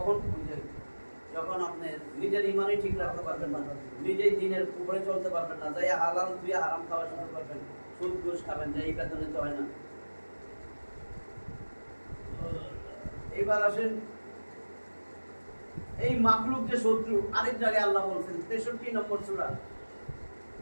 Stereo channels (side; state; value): both; inverted; correlation -1.00